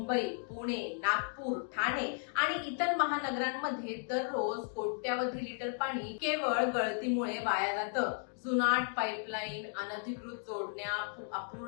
पुणे, नागपूर, ठाणे आणि इतर महानगरांमध्ये दररोज कोट्यावधी लिटर पाणी केवळ गळतीमुळे वाया जातं। जुनाट पाईपलाईन, अनधिकृत जोडण्या,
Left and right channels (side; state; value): right; silent; 55 dB below the other